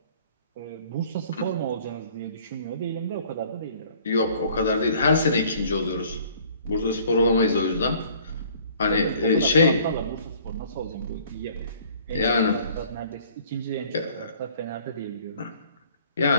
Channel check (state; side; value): inverted; both; correlation -0.55